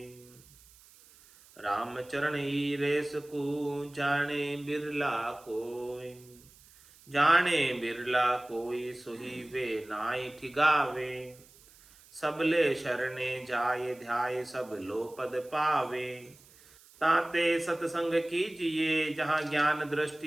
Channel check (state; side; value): noise; right; hiss, 25 dB below the sound